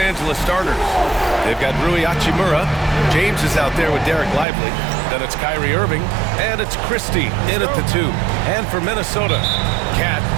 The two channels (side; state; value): left; drops out; at 4.5 s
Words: starters. They've got Rui Hachimura. James is out there with Derek Lively. Then it's Kyrie Irving. And it's Christie in at the 2. And for Minnesota, Cat